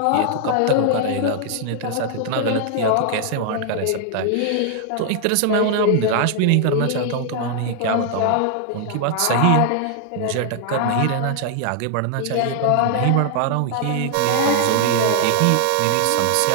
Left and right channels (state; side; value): different; both; correlation 0.00